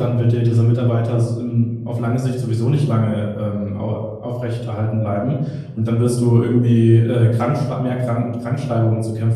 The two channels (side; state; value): both; identical; correlation 1.00